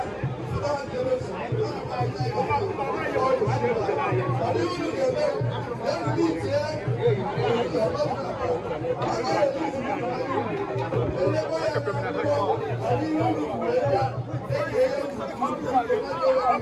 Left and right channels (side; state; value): both; identical; correlation 1.00